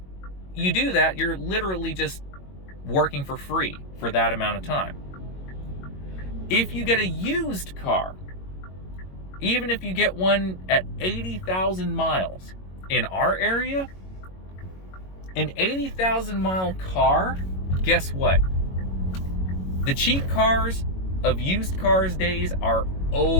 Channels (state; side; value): late; right; 22 ms